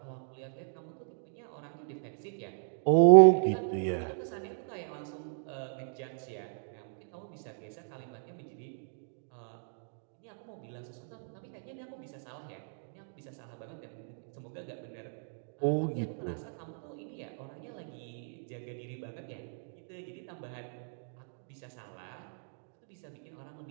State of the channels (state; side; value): silent; left; digital silence